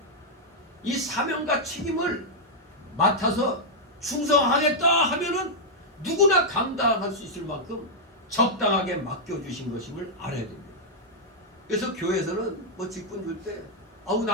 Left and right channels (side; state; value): both; normal; correlation -0.05